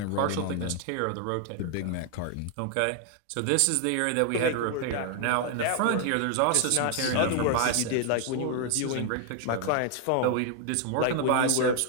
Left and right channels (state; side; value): different; both; correlation 0.00